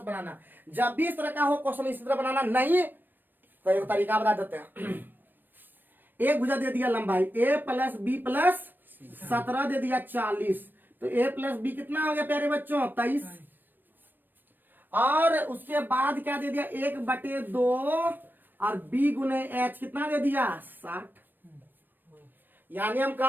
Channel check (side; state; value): left; late; 0.092 ms